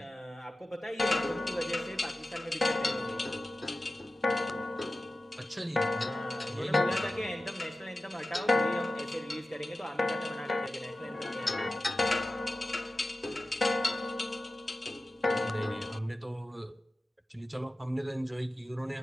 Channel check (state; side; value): normal; both; correlation 0.95